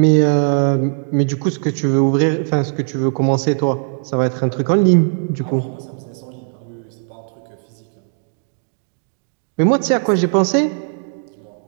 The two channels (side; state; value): left; silent; digital silence